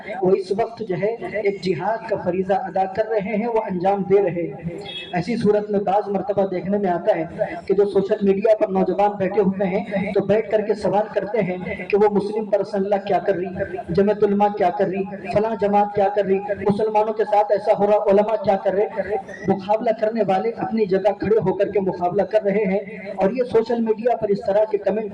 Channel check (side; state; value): both; identical; correlation 1.00